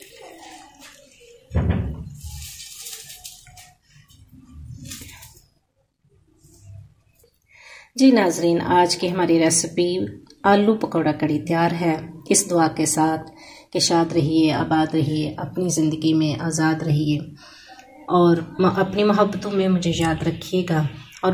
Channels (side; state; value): both; identical; correlation 1.00